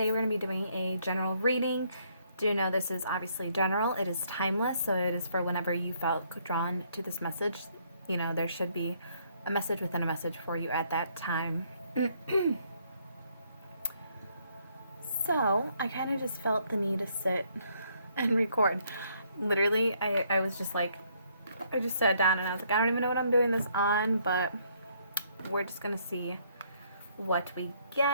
we're going to be doing a general reading. Do know this is obviously general, it is timeless, so it is for whenever you felt drawn to this message. You know, there should be a message within a message for you at that time. So I kind of just felt the need to sit and record. Literally, I was just like, I just sat down and I was like, I don't even know what I'm doing this on, but we're just going to see what we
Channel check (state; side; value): inverted; both; correlation -0.68